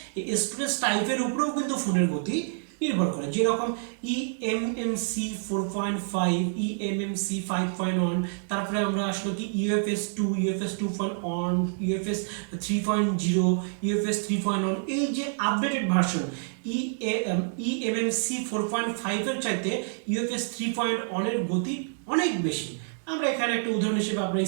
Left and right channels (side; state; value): left; silent; digital silence